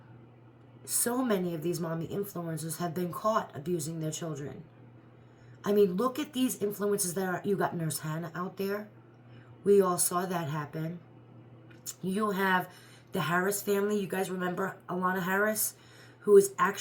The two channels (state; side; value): identical; both; correlation 1.00